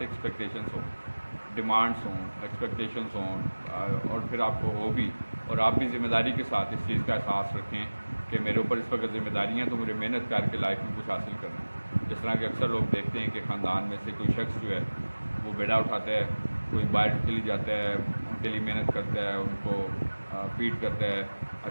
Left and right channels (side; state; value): both; inverted; correlation -1.00